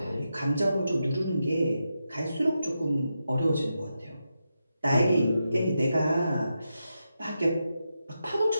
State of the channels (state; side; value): inverted; both; correlation -0.87